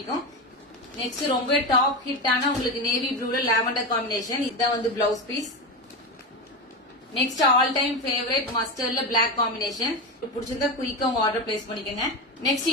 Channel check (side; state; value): both; normal; correlation 0.18